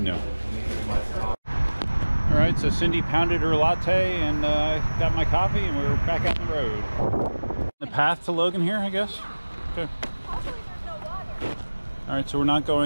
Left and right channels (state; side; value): inverted; both; correlation -1.00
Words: All right, so Cindy pounded her latte and got my coffee, and we're back out on the road. The path to Logan here, I guess. Okay. All right, so we're not